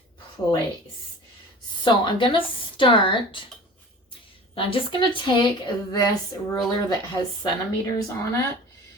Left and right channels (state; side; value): normal; both; correlation 0.40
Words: place. So I'm gonna start, I'm just gonna take this ruler that has centimeters on it,